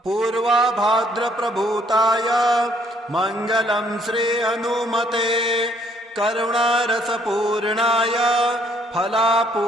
पूर्वाभाद्र प्रभूताय मंगलं श्री हनुमते करुणारसपूर्णाय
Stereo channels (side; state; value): both; normal; correlation 0.65